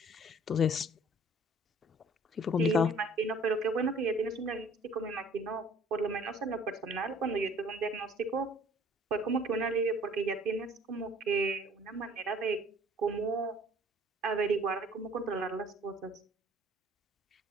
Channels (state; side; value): normal; both; correlation 0.53